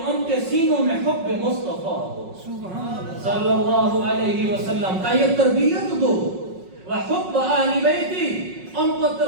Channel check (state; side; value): late; left; 5.4 ms